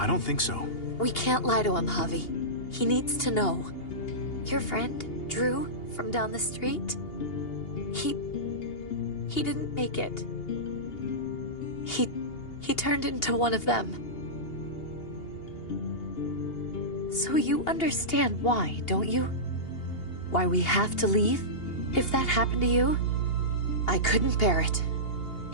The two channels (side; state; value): right; late; 2.8 ms